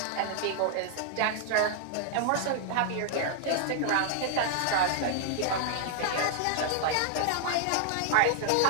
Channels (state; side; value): different; both; correlation 0.00